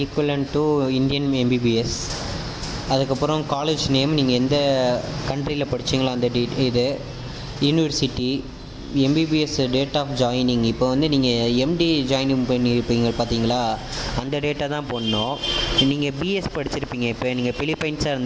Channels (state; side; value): identical; both; correlation 1.00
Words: ஈக்குவலன்ட் டு இந்தியன் எம்பிபிஎஸ். அதுக்கப்புறம் காலேஜ் நேம், நீங்கள் எந்த கண்ட்ரியில் படித்தீங்களோ அந்த இது, university, MBBS date of joining, இப்போ வந்து நீங்கள் எம்டி ஜாயினிங் பண்ணியிருப்பீங்க பார்த்தீங்களா, அந்த டேட்டை தான் போடணும். நீங்கள் பிஎஸ் படிச்சிருப்பீங்க, இப்போ நீங்கள் பிலிப்பைன்ஸாக